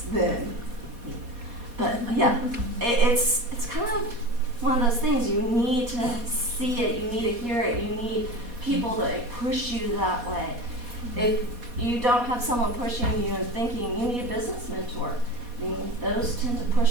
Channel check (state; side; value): late; left; 4.2 ms